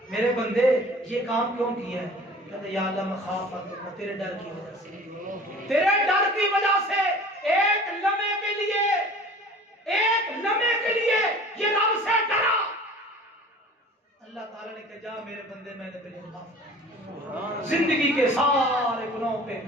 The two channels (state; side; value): normal; both; correlation 0.44